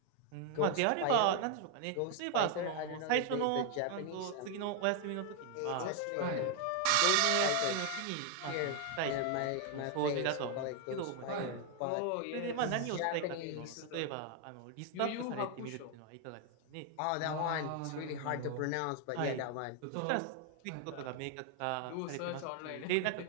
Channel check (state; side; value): different; both; correlation 0.01